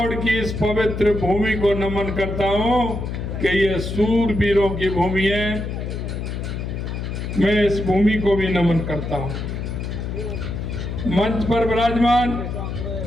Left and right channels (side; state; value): left; noise; hum, 5 dB below the sound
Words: की इस पवित्र भूमि को नमन करता हूं कि ये सूरवीरों की भूमि है। मैं इस भूमि को भी नमन करता हूं। मंच पर विराजमान